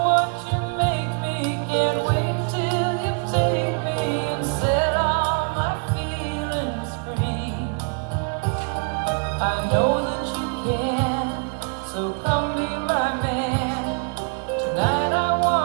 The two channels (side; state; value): left; quieter; 38.3 dB